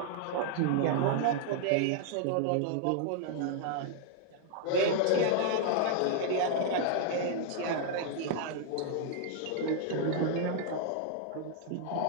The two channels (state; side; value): different; both; correlation -0.01